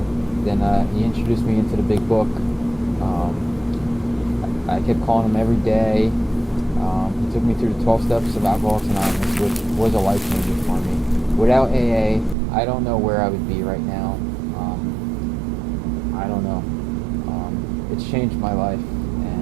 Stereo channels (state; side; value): drops out; left; at 12.4 s